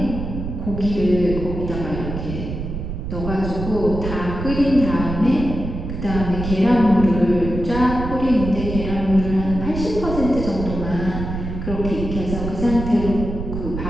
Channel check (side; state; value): right; noise; rumble, 6 dB below the sound